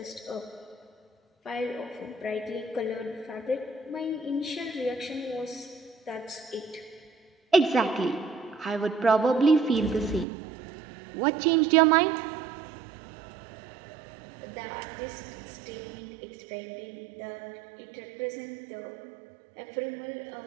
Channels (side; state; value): left; drops out; at 10.2 s